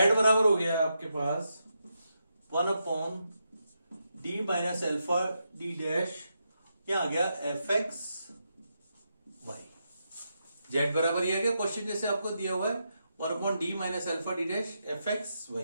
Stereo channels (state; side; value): inverted; both; correlation -0.84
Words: बराबर हो गया आपके पास 1 upon D minus alpha D dash, क्या आ गया एफ एक्स वाई। जेड बराबर ये आ गया क्वेश्चन जैसे आपको दिया हुआ है 1 upon D minus alpha D dash F x